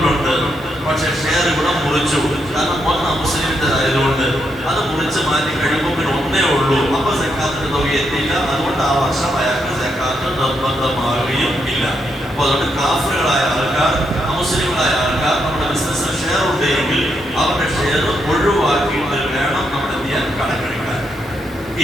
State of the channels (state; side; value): normal; both; correlation 0.80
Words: പക്ഷെ ഷെയർ ഇവിടെ മുറിച്ചു. കാരണം ഒന്ന് മുസ്ലിമിൻ്റെതായതുകൊണ്ട് അത് മുറിച്ച് മാറ്റി കഴിയുമ്പോൾ പിന്നെ ഒന്നേ ഉള്ളൂ. അപ്പൊ സക്കാത്തിന്റെ തുക എത്തിയില്ല. അതുകൊണ്ട് ആ വർഷം അയാൾക്ക് സക്കാത്ത് നിർബന്ധമാവുകയും ഇല്ല. അപ്പൊ അതുകൊണ്ട് കാഫിറുകളായ ആൾക്കാർ, അമുസ്ലിങ്ങളായ ആൾക്കാർ നമ്മുടെ ബിസിനസ്സിൽ ഷെയർ ഉണ്ടെങ്കിൽ അവരുടെ ഷെയർ ഒഴിവാക്കിയിട്ട് വേണം നമ്മൾ എന്ത് ചെയ്യാൻ, കണക്കെടുക്കാൻ.